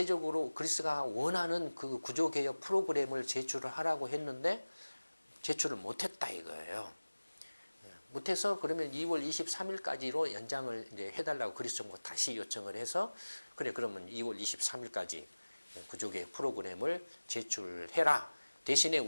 그리스가 원하는 그 구조개혁 프로그램을 제출을 하라고 했는데 제출을 못했다 이거예요. 못해서 그러면 2월 23일까지로 연장을 이제 해달라고 그리스 정부가 다시 요청을 해서 그래 그러면 2월 23일까지 구조개혁 프로그램을 제출해라. 대신에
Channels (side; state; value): both; inverted; correlation -1.00